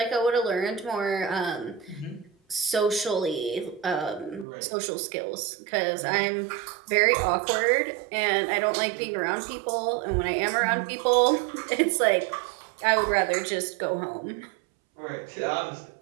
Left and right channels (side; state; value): left; drops out; at 4.5 s